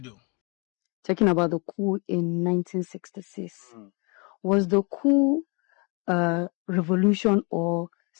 Talking about the coup in 1966. Was the coup a revolution or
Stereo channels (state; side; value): quieter; right; 32.3 dB